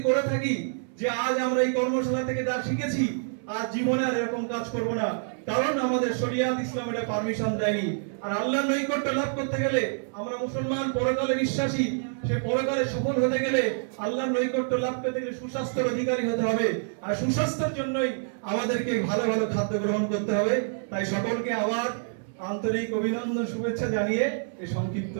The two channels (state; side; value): silent; left; 59 dB below the other